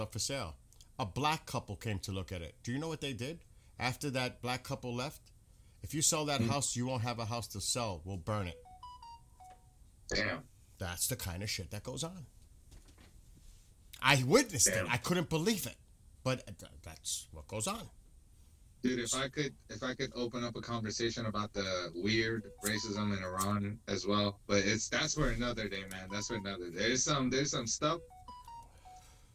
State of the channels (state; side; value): identical; both; correlation 1.00